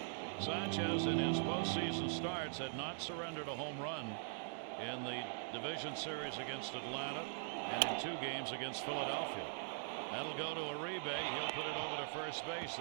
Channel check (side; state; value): left; silent; digital silence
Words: Sanchez in his postseason starts had not surrendered a home run in the division series against Atlanta and in 2 games against Philadelphia. That'll go to Uribe. He'll put it over to first base,